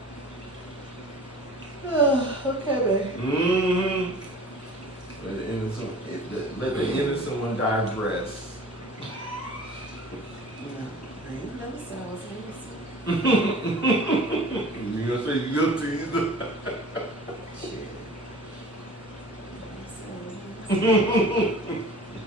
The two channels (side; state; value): both; normal; correlation 0.43